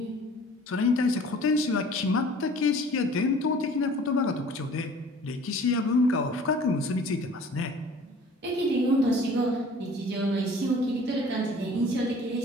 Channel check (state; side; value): normal; both; correlation 0.49